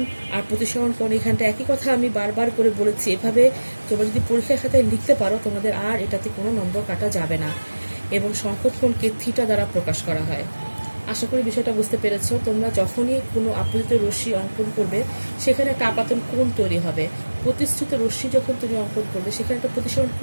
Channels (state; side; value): inverted; both; correlation -1.00